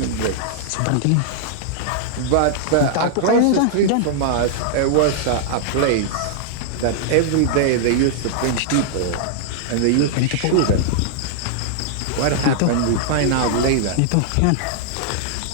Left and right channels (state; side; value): different; both; correlation -0.01